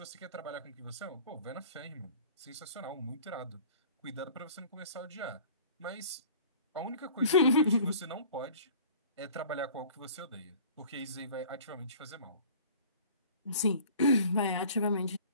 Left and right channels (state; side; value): inverted; both; correlation -0.46